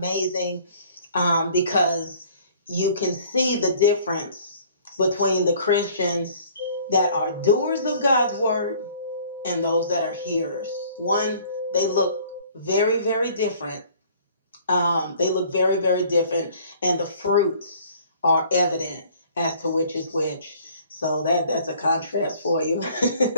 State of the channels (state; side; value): inverted; both; correlation -0.54